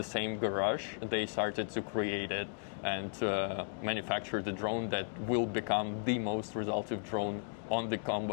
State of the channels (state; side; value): silent; right; digital silence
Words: same garage they started to create it and manufacture the drone that will become the most resultive drone on the